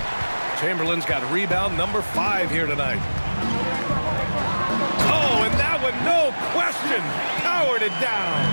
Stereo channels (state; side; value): inverted; both; correlation -1.00